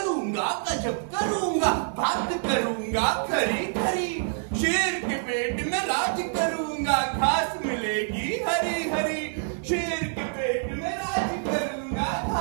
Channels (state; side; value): silent; left; digital silence